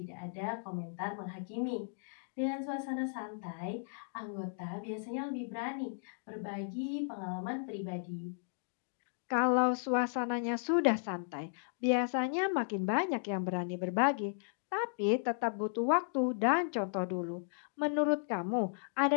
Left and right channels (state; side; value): silent; right; digital silence